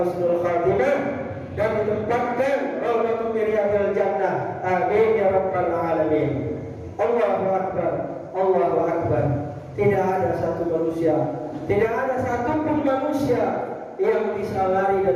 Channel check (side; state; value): both; identical; correlation 1.00